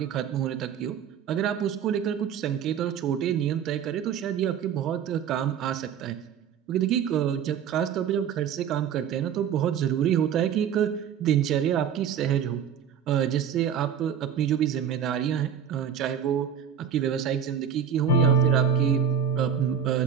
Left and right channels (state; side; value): quieter; left; 8.2 dB